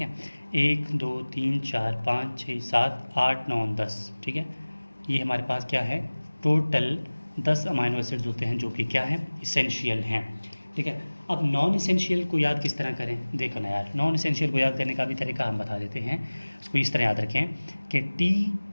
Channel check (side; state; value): both; inverted; correlation -1.00